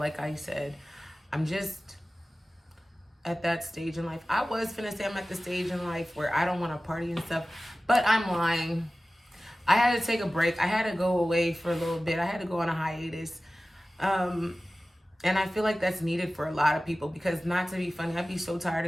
I said, I'm just at that stage in life. I was finna say I'm at the stage in life where I don't want to party and stuff, but I'm lying. I had to take a break. I had to go away for a little bit. I had to go on a hiatus. And I feel like that's needed for a lot of people because, not to be funny, I'd be so tired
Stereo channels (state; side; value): normal; both; correlation 0.96